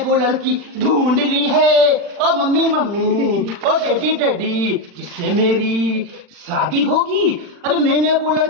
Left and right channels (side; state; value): left; late; 40 ms